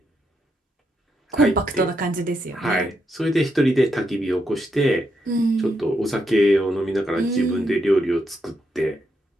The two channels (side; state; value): both; normal; correlation 0.81